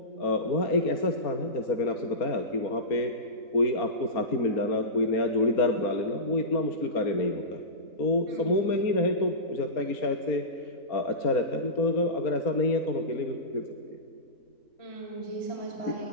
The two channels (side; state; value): right; late; 4.3 ms